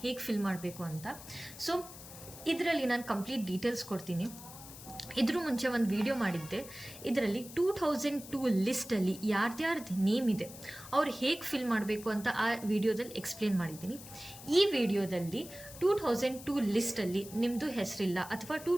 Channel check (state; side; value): noise; left; hiss, 15 dB below the sound